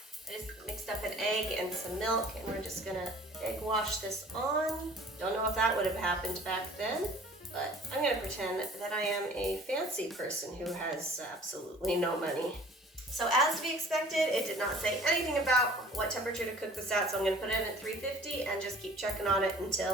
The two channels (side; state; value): both; normal; correlation 0.49